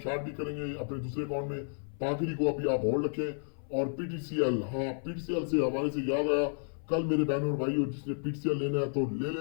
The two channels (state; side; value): silent; right; 56 dB below the other